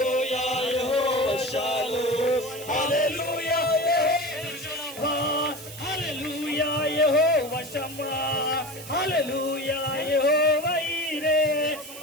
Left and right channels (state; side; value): noise; right; hiss, 14 dB below the sound